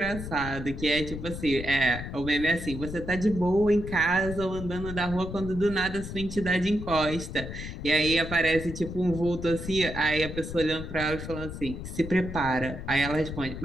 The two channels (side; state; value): left; noise; rumble, 8 dB below the sound